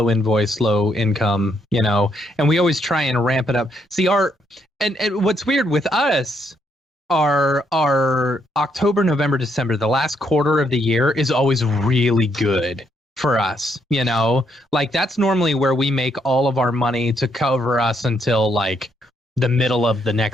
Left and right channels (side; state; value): both; normal; correlation 0.75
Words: invoice, low income, and we always try and ramp it up. See, and what's weird with us, our October, November, December, the last quarter of the year is always really good for us. Like that's normally where we make all of our money to cover us until like the middle of the